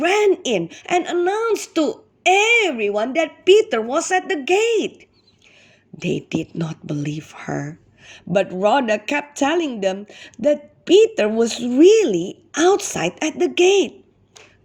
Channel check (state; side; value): identical; both; correlation 1.00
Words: in and announced to everyone that Peter was at the gate. They did not believe her, but Rhoda kept telling them that Peter was really outside at the gate.